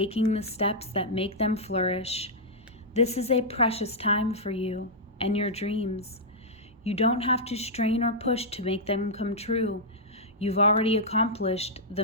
the steps that make them flourish. This is a precious time for you and your dreams. You don't have to strain or push to make them come true. You've already accomplished the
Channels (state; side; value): normal; both; correlation -0.08